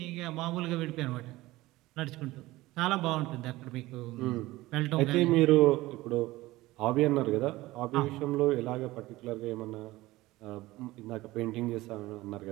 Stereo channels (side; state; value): left; quieter; 18.4 dB